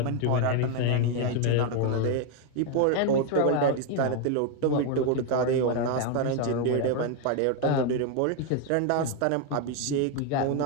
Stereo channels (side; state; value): both; different; correlation 0.01